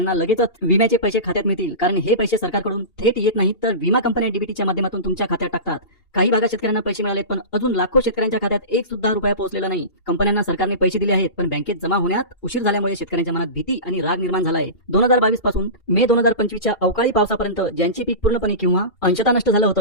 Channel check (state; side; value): late; right; 2.8 ms